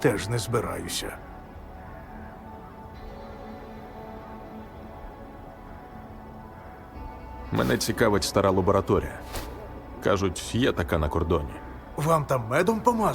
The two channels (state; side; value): identical; both; correlation 1.00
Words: не збираюся. Мене цікавить стара лабораторія. Кажуть, є така на кордоні. Вам там медом